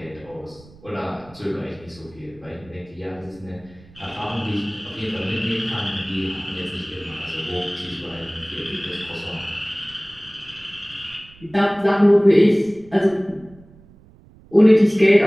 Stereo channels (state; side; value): noise; right; rumble, 24 dB below the sound